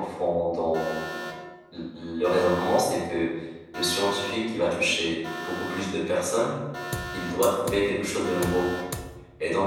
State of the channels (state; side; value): identical; both; correlation 1.00